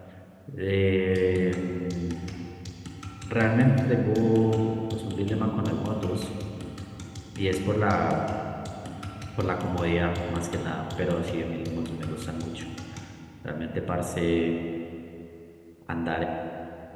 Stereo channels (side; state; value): both; identical; correlation 1.00